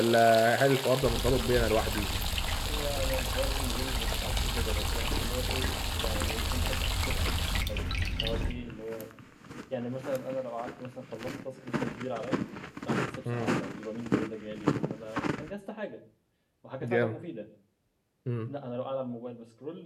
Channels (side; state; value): both; identical; correlation 1.00